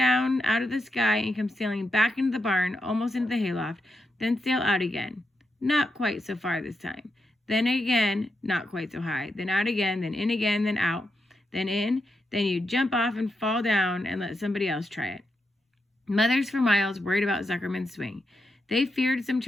out of the sky and come sailing back into the barn, almost into the hayloft, then sail out again. Not quite so far this time. Then again, not quite so high. Then out again, then in again, then out, then in. Then you jump off and fall down and let somebody else try it. Mothers for miles worried about Zuckerman's swing. They feared some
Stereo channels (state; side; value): normal; both; correlation 0.85